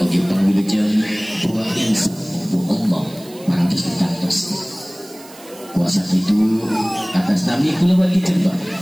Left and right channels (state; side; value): noise; right; hiss, 21 dB below the sound